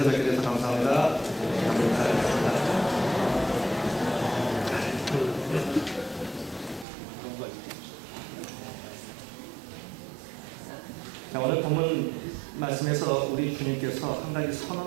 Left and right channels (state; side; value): drops out; left; at 6.9 s